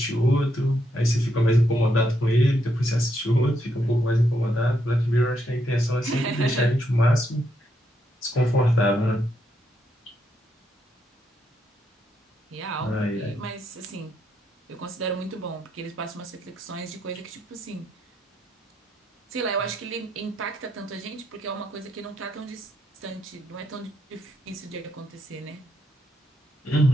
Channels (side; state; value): both; normal; correlation 0.78